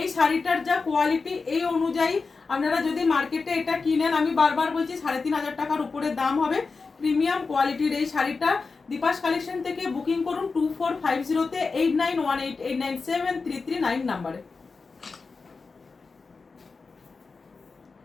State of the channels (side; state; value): right; quieter; 4.4 dB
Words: শাড়িটার যা কোয়ালিটি, এই অনুযায়ী আপনারা যদি মার্কেটে এটা কিনেন, আমি বারবার বলছি 3500 টাকার উপরে দাম হবে। প্রিমিয়াম কোয়ালিটির এই শাড়িটা দীপাস কালেকশন থেকে বুকিং করুন 2450-তে 8918897339 নাম্বারে।